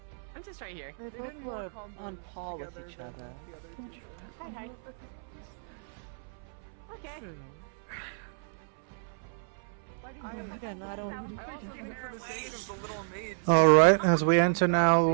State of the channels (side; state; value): left; silent; 57 dB below the other